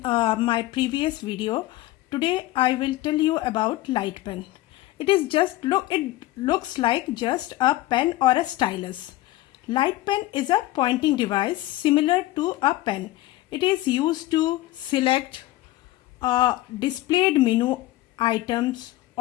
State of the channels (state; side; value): quieter; right; 16.7 dB